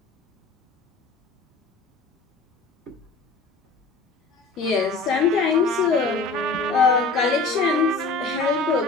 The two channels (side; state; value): right; quieter; 3.6 dB